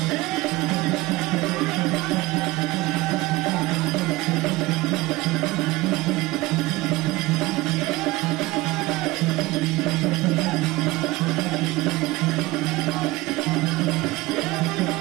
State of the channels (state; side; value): quieter; left; 20.0 dB